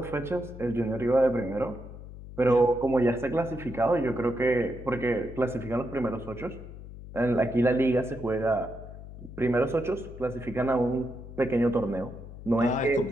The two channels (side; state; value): left; noise; hum, 14 dB below the sound